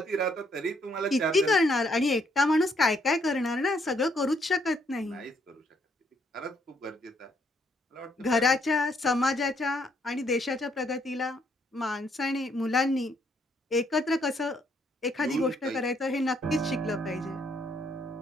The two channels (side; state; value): both; normal; correlation 0.71